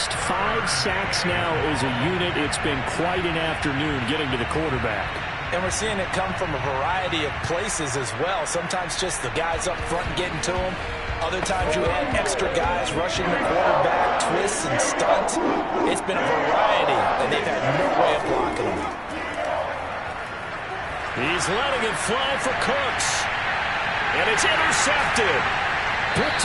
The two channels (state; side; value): identical; both; correlation 1.00